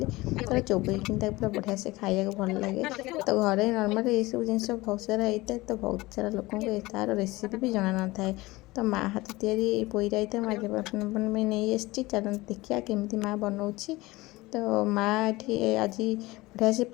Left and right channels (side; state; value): right; quieter; 20.5 dB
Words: चोबईक पूरा बढ़िया से खाया भल लगे तो घरे नर्माल ये सब जिन बहुत सारा होता है तो बहुत सारा लोक तार रेसीपी भी जना न था तो माँ हाथ तैयारी पोई रायता मैं नहीं आसी चल देखिए केमी माँ बनाऊँगी तो माँ ये आज बढ़िया से